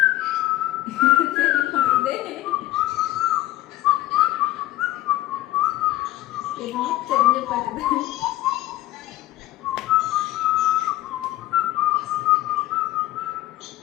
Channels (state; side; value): quieter; right; 15.7 dB